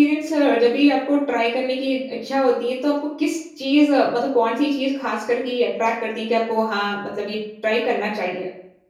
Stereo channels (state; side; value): identical; both; correlation 1.00